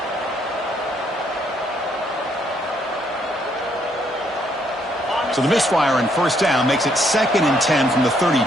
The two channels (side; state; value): both; normal; correlation 0.71